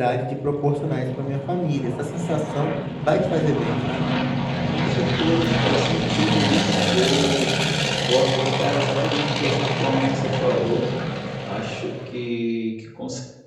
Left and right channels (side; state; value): both; identical; correlation 1.00